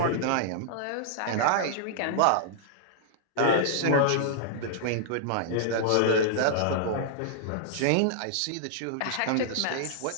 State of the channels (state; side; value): different; both; correlation -0.01